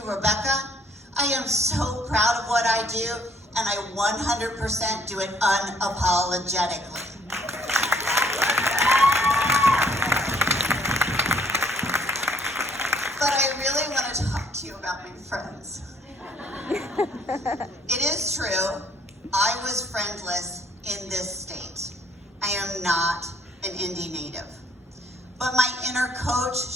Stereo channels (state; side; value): normal; both; correlation 0.63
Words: Rebecca. I am so proud of what I do, and I 100% do it unapologetically. But I really want to talk to you about my friends. It is true, I was friendless in this state. I am not an Indy native. But my inner coach,